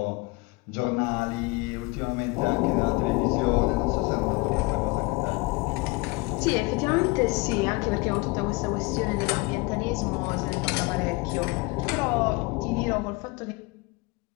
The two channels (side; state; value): right; quieter; 26.2 dB